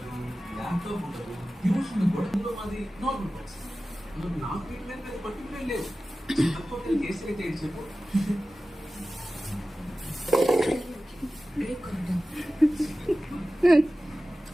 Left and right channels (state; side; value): normal; both; correlation 0.95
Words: ల్యాప్టాప్ ఉండదు, ట్యూషన్ కూడా మాది నార్మల్ బాక్స్. నా ట్రీట్మెంట్ మీద పర్టికులర్ లేదు. హోటల్ కేసు అయితే ఏంటి చెప్పు.